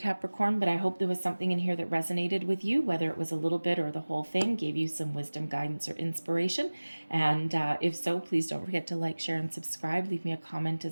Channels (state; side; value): inverted; both; correlation -1.00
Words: but I hope there was something in here that resonated with you, whether it was a little bit or the whole thing, gave you some wisdom, guidance, or inspiration. And if so, please don't forget to like, share, and subscribe. Leave me a comment